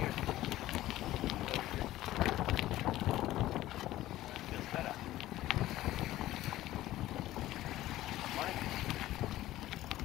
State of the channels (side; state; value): right; quieter; 15.2 dB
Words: Feels better. Morning.